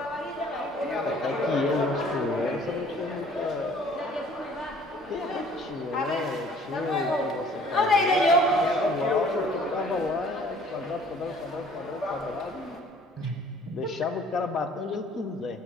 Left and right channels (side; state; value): both; normal; correlation 0.54